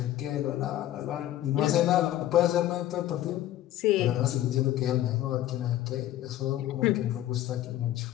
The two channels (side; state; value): right; quieter; 13.5 dB